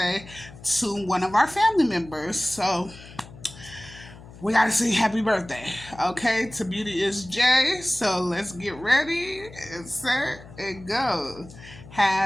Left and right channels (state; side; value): noise; left; hum, 18 dB below the sound